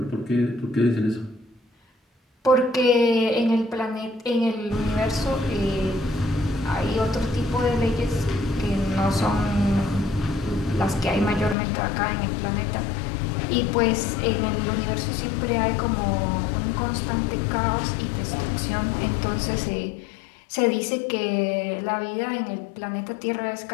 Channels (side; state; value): right; drops out; at 11.6 s